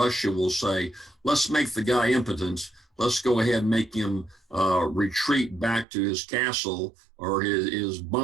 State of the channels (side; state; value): left; drops out; at 5.9 s